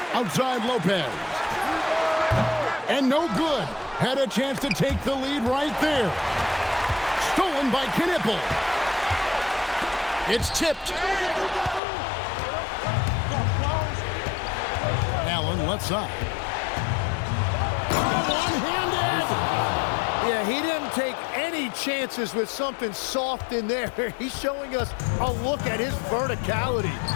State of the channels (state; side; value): drops out; right; at 11.8 s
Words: Outside Lopez. And no good. Had a chance to take the lead right there. Stolen by Knipple. It's tipped. Allen left side. One-handed. Yeah, he didn't take any chances with something soft in there. He's showing us a look at his verticality.